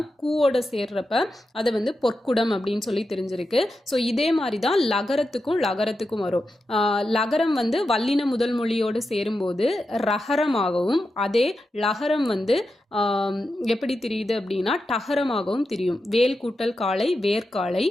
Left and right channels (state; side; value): normal; both; correlation 0.89